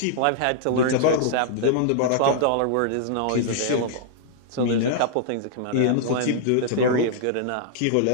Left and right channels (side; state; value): both; different; correlation -0.01